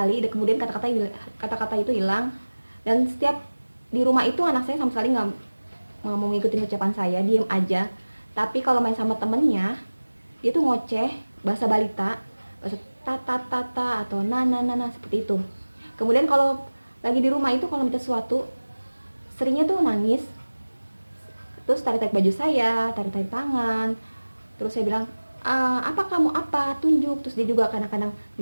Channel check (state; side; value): inverted; both; correlation -1.00